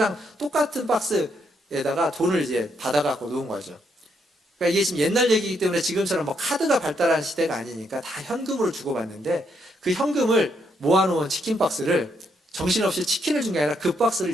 똑같은 박스에다가 돈을 이제 받아갖고 놓은 거죠. 그러니까 이게 지금 옛날 얘기이기 때문에 지금처럼 뭐 카드가 발달한 시대가 아니니까 다 현금으로 주고받는데 그 현금을 모아놓은 치킨 박스를 정신없이 치킨을 준 게 아니라 그 박스를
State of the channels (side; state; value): both; normal; correlation 0.76